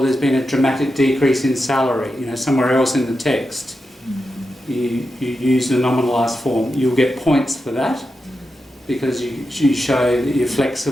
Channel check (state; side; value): normal; both; correlation 0.89